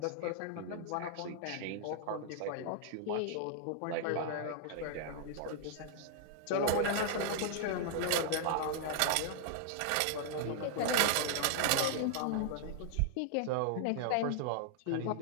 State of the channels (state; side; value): different; both; correlation 0.00